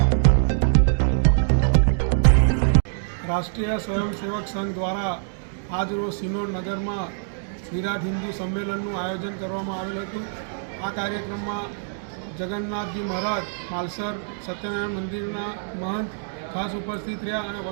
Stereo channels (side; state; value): left; silent; digital silence